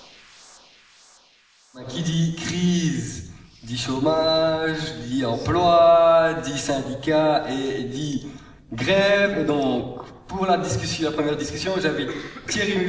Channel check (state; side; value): identical; both; correlation 1.00